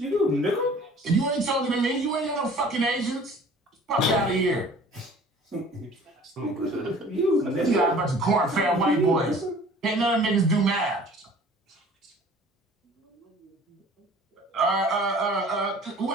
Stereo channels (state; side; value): normal; both; correlation 0.49